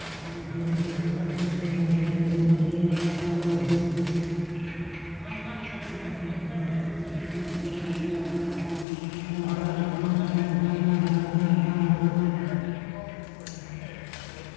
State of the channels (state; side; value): drops out; right; at 8.8 s